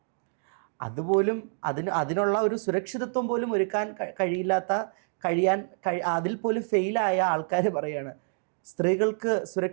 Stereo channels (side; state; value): left; silent; digital silence